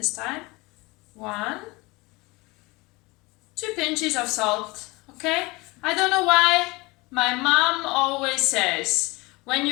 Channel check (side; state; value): right; quieter; 23.9 dB